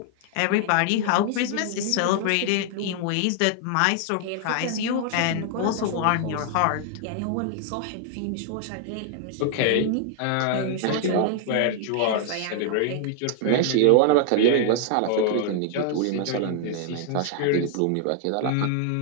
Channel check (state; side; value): different; both; correlation 0.00